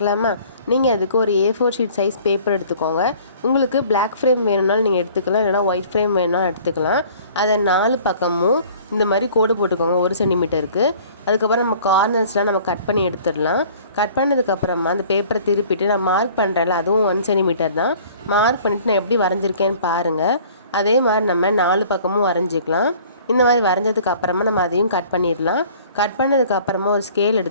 நீங்கள் அதுக்கு ஒரு A4 ஷீட் சைஸ் பேப்பர் எடுத்துக்கோங்க. உங்களுக்கு பிளாக் ஃப்ரேம் வேணும்னாலும் நீங்கள் எடுத்துக்கலாம், இல்லைனா ஒயிட் ஃப்ரேம் வேணும்னாலும் எடுத்துக்கலாம். அதை 4 பக்கமும் இந்த மாதிரி கோடு போட்டுக்கோங்க 1 சென்டிமீட்டருக்கு. அதுக்கப்புறம் நம்ம கார்னர்ஸ்லாம் நம்ம கட் பண்ணி எடுத்துடலாம். கட் பண்ணதுக்கப்புறமா அந்த பேப்பரை திருப்பிட்டு நான் மார்க் பண்ணுறேன்ல, அதுவும் 1 சென்டிமீட்டர் தான். மார்க் பண்ணிவிட்டு நான் எப்படி வரைஞ்சிருக்கேன்னு பாருங்கள். அதே மாதிரி நம்ம 4 பக்கமும் வரைஞ்சிக்கலாம். இந்த மாதிரி வரைஞ்சதுக்கு அப்புறமா நம்ம அதையும் கட் பண்ணிடலாம். கட் பண்ணதுக்கு அப்புறமா ஒரு ஸ்கேல்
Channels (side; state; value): both; inverted; correlation -0.51